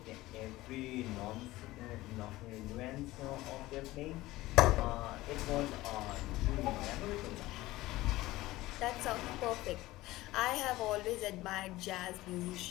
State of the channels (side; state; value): right; quieter; 17.9 dB